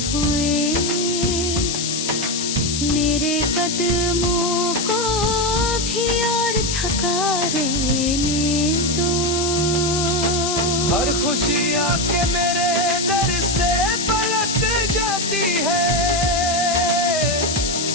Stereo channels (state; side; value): noise; left; hiss, 2 dB below the sound